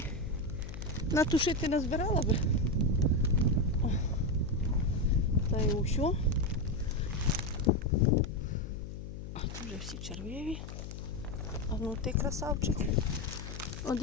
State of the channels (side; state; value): left; noise; hum, 9 dB below the sound